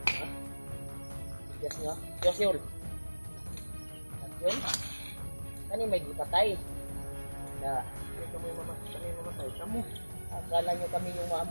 Yes nga. Yes yun. Yun? Kani may gipatay. Na, Kami mamatay. Kamu. akala nyo kami yung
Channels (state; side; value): inverted; both; correlation -1.00